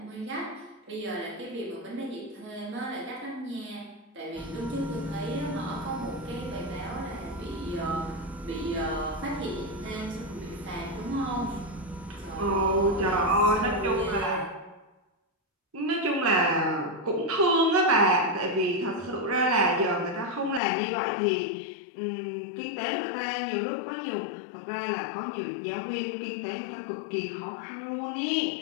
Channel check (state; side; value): drops out; right; at 20.6 s